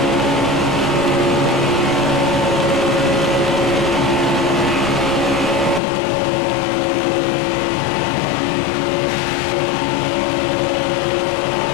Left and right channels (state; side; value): drops out; right; at 5.8 s